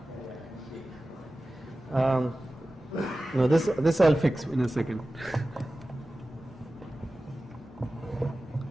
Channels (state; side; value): normal; both; correlation 0.96